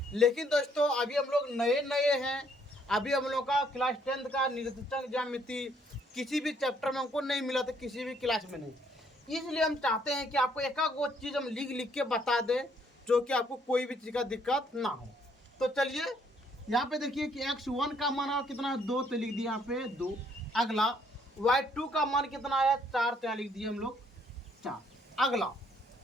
लेकिन दोस्तों अभी हम लोग नए नए हैं, अभी हम लोग का क्लास 10th का निर्देशांक ज्यामिति किसी भी चैप्टर में हमको नहीं मिला था, किसी भी क्लास में नहीं। इसलिए हम चाहते हैं कि आपको एक वो चीज़ हम लिख के बता दें जो कि आपको कोई भी चीज़ का दिक्कत ना हो। तो चलिए यहाँ पे देखिए कि x1 का मान कितना है 2, तो लिख दिया यहाँ पे 2। अगला y2 का मान कितना आया 4, तो यहाँ लिख दिए हम लोग 4। अगला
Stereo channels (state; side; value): normal; both; correlation 0.67